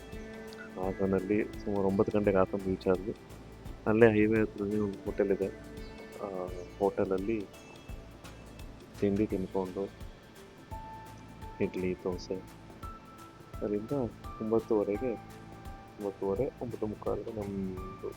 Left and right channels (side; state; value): both; identical; correlation 1.00